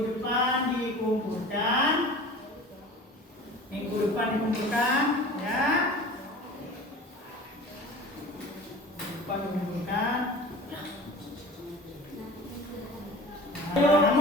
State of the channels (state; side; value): normal; both; correlation 0.39